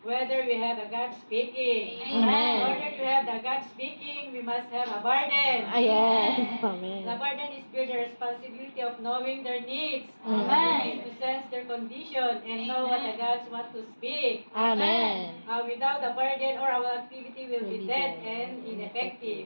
we have a God speaking. Amen. In order to have the God speaking, we must have a burden. Yes. Amen. The burden is bear the responsibility of knowing their needs. Amen. To sense their condition and know what the gods want to speak. Amen. Without the burden, or our activity will be dead and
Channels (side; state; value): both; inverted; correlation -1.00